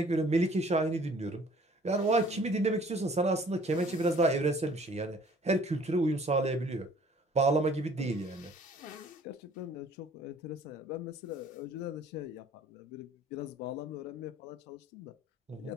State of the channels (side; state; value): both; normal; correlation 0.55